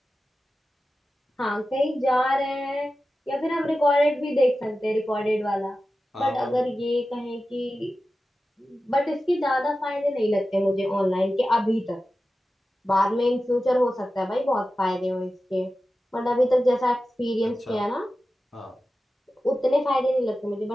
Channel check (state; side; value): normal; both; correlation 0.94